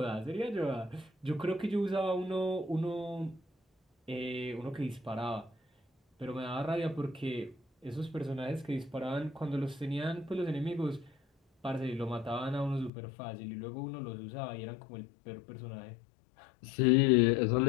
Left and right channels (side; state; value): right; drops out; at 12.9 s